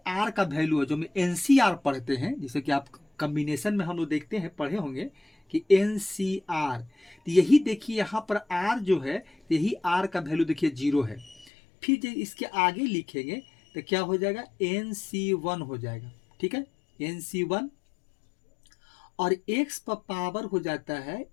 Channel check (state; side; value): drops out; right; at 11.5 s